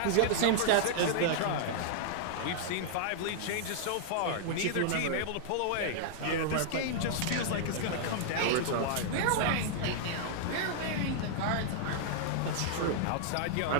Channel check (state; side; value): different; both; correlation -0.01